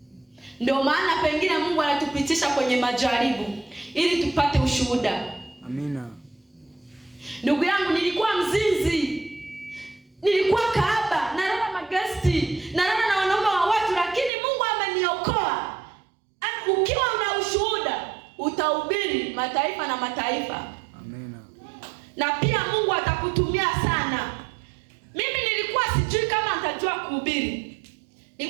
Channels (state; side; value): drops out; left; at 14.3 s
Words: Ndio maana pengine Mungu anatupitisha kwenye majaribu ili tupate ushuhuda. Amina. Ndugu yangu, nilikuwa mzinzi, nilikuwa kahaba, nalala magesti, nalala na wanaume wa watu, lakini Mungu ameniokoa. Ukiwa una ushuhuda, utahubiri mataifa na mataifa. Amina. Na pia Mungu atakutumia sana. Mimi nilikuwa sijui kama nitajua kuhubiri.